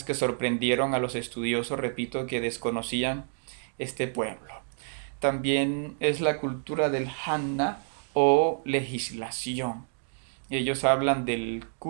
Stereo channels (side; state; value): left; silent; 59 dB below the other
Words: que sorprendieron a los estudiosos, repito, que desconocían este pueblo. También es la cultura del Hanna o legislación. Ellos hablan del